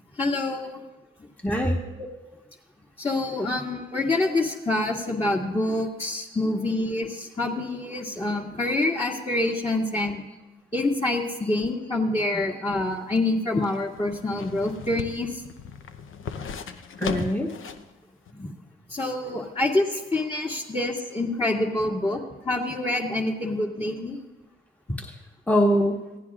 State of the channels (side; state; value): both; normal; correlation 0.69